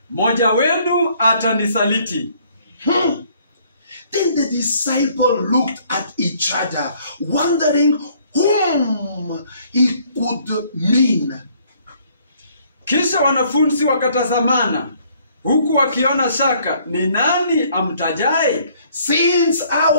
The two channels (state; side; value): inverted; both; correlation -0.62